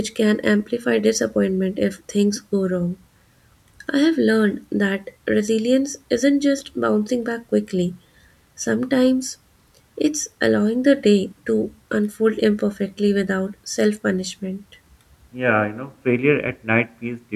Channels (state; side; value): identical; both; correlation 1.00